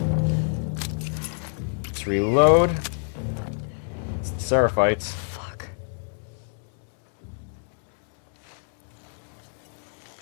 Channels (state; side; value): silent; right; 61 dB below the other